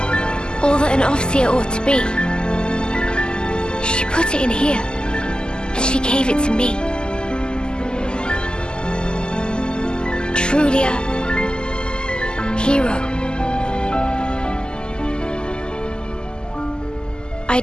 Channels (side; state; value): right; late; 0.046 ms